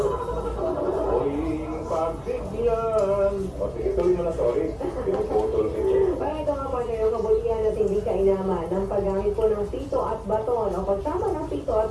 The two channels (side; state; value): both; identical; correlation 1.00